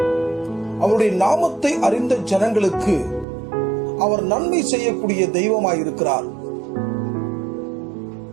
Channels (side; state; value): left; drops out; at 3.2 s